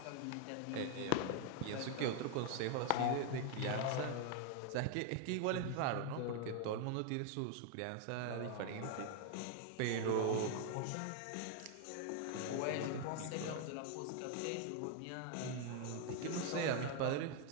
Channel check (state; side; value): different; both; correlation 0.01